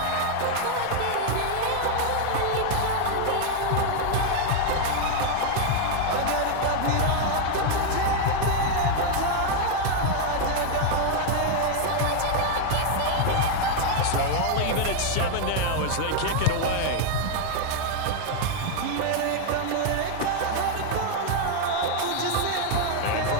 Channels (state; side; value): different; both; correlation 0.00